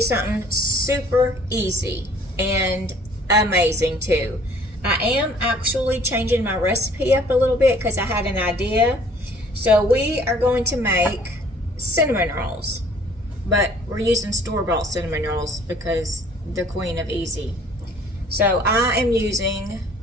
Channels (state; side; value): normal; both; correlation 0.55